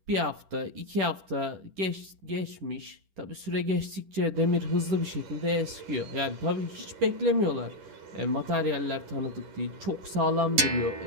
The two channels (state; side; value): late; left; 11 ms